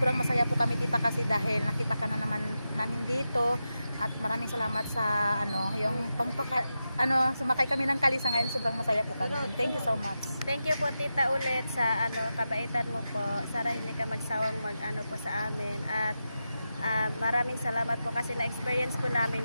masaya po kami tita kasi dahil nakita ka na naman namin dito at maraming salamat sa yung sumakay kami ng kalisa ngayon, sobrang masaya po kami. Thank you so much. Thank you po Tita ulit sa kabaitan mo po. Sana hindi ka magsawang po sa amin at maraming salamat po kasi na-experience po namin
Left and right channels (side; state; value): both; inverted; correlation -0.90